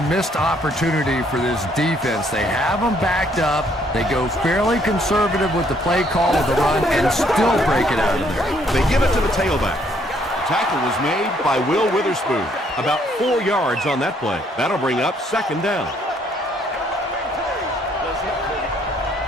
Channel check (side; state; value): both; normal; correlation 0.67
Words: missed opportunity for this defense. They have them backed up. They go fairly conservative with the play call of the run and still break it out of there. They give it to the tailback. Tackle was made by Will Witherspoon. About 4 yards on that play. That'll bring up second down.